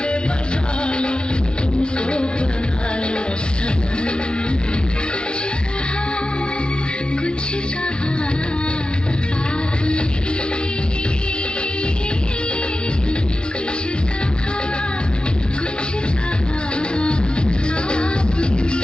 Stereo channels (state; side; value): late; right; 0.054 ms